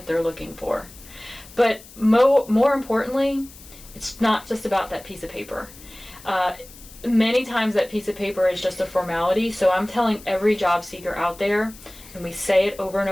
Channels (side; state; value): left; noise; hiss, 20 dB below the sound